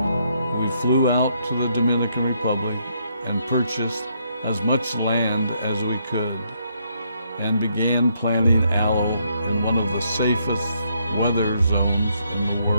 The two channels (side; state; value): both; inverted; correlation -0.74